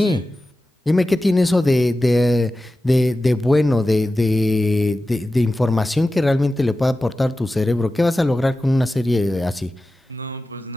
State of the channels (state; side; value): normal; both; correlation 0.94